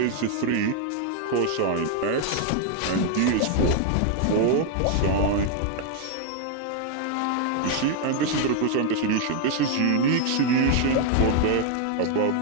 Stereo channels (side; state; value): both; different; correlation 0.00